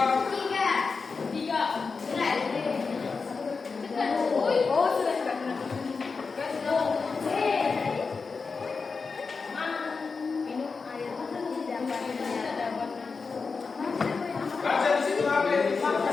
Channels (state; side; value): quieter; right; 4.7 dB